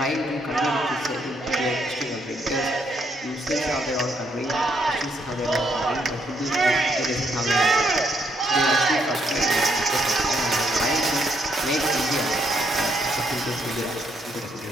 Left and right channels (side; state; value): both; normal; correlation 0.74